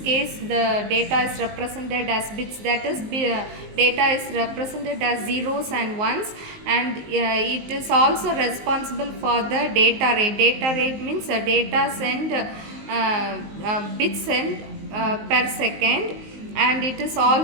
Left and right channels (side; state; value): left; late; 19 ms